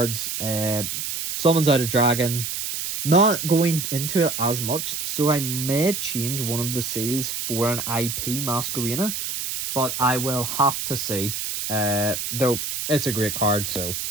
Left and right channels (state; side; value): noise; right; hiss, 4 dB below the sound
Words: Summons out a dragon. Not going into it as much, so I may change one of the seals for an IP Masquerena, but I will have to see. Though it's a great card, so